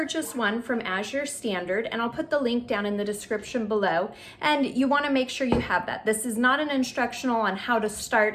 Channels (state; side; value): identical; both; correlation 1.00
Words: one from As Your Standard, and I'll put the link down in the description below, and you want to make sure you have that. This is not an instructional on how to